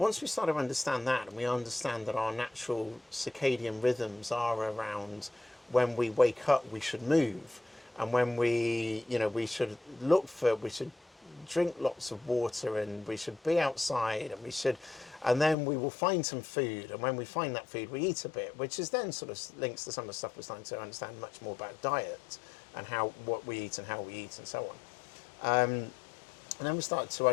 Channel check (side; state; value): right; drops out; at 15.6 s